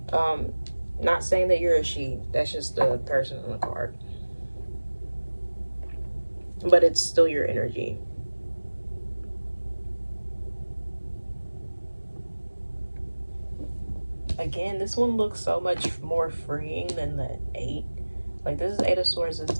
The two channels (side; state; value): both; inverted; correlation -1.00